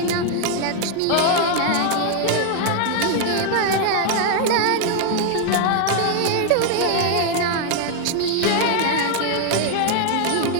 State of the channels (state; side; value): different; both; correlation 0.00